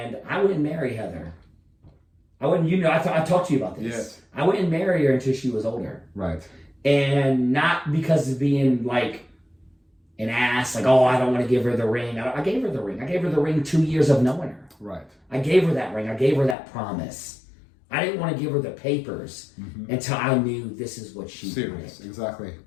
I wouldn't marry Heather. I wouldn't, I talked to you about this. Yes. I wouldn't marry her until she was older. Right. And not because of being like an ass, like, oh, I don't want to give her the ring. I gave her the ring. I gave her the ring 2 years of knowing her. Right. I gave her that ring. I gave her that promise. I didn't want to give her the papers until I knew this is what she wanted. Exactly.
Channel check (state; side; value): drops out; right; at 16.6 s